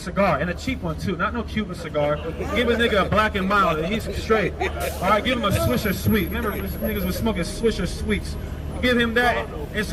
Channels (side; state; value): both; identical; correlation 1.00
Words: and a cheap one too, not no Cuban cigar. Give a nigga a Black and Mild, and he's straight. All right, give him a Swisher Sweet. Remember, niggas was smoking Swisher Sweets. Give him that and